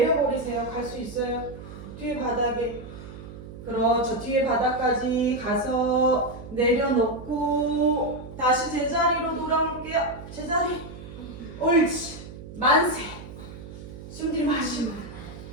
갈 수 있어요. 뒤에 바닥에. 그렇죠. 뒤에 바닥까지 가서 내려놓고 다시 제자리로 돌아올게요. 제자리. 옳지. 만세. 숨 들이마시고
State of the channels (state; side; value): noise; right; hum, 14 dB below the sound